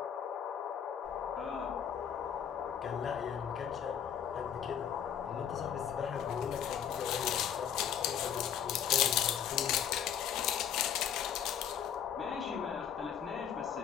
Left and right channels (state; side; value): quieter; right; 8.9 dB